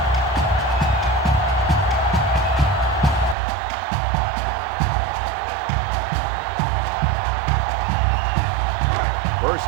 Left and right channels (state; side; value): drops out; left; at 3.4 s